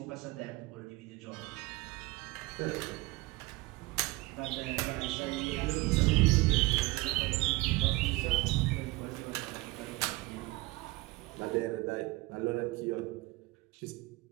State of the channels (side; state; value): left; quieter; 21.7 dB